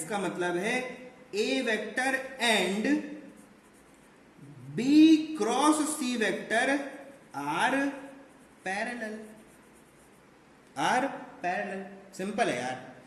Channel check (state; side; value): identical; both; correlation 1.00